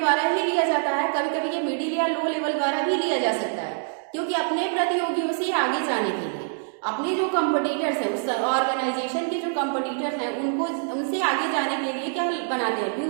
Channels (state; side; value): silent; left; 62 dB below the other